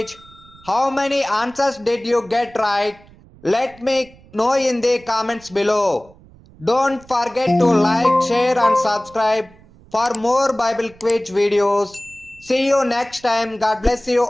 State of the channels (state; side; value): noise; right; rumble, 25 dB below the sound